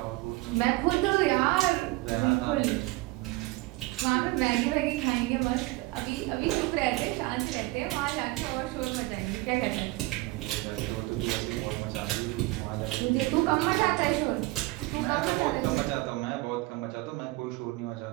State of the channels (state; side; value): quieter; left; 21.3 dB